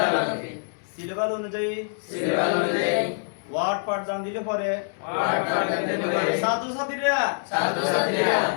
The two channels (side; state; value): right; silent; digital silence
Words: সিলেবাস অনুযায়ী ওয়ার্ড পাঠদান দিলে পরে ছাত্রছাত্রীরা